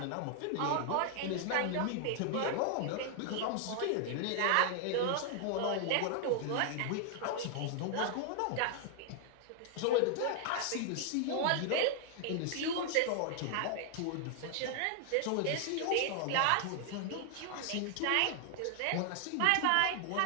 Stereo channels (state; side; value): different; both; correlation 0.00